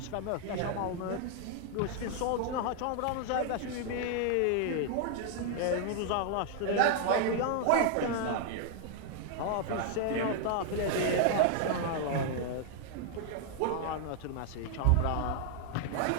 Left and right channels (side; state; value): both; different; correlation 0.00